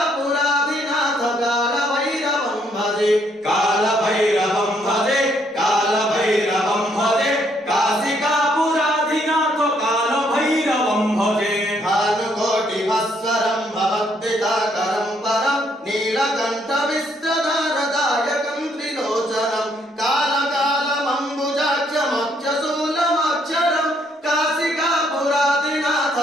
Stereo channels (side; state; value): both; normal; correlation 0.70